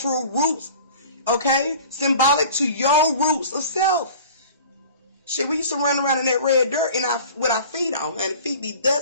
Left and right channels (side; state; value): both; inverted; correlation -0.44